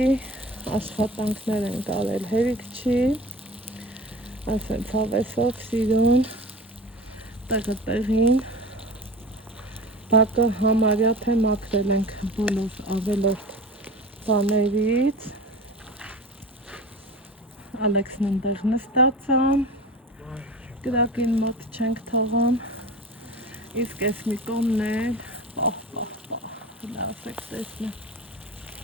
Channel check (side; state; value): both; normal; correlation 0.35